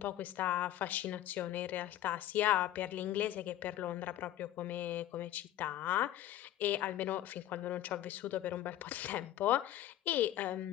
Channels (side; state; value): right; quieter; 13.2 dB